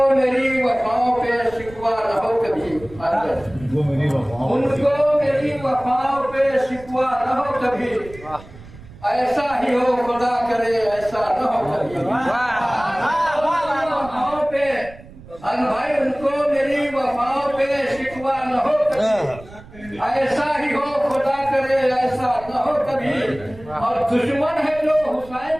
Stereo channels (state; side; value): noise; right; rumble, 19 dB below the sound